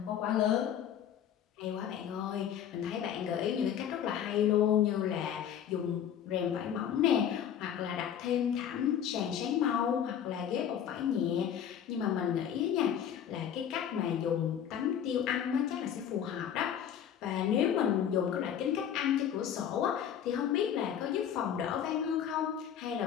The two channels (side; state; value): right; quieter; 9.2 dB